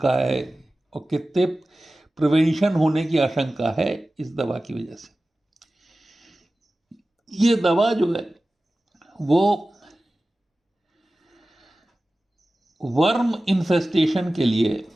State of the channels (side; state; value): both; normal; correlation 0.96